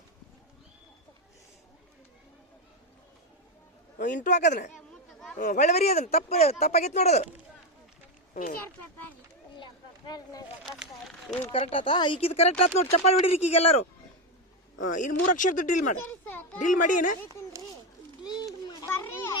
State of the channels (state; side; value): normal; both; correlation 0.10